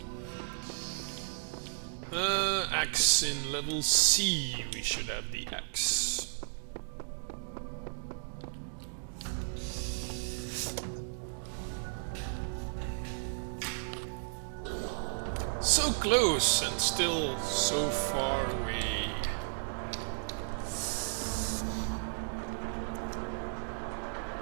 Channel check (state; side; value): silent; left; digital silence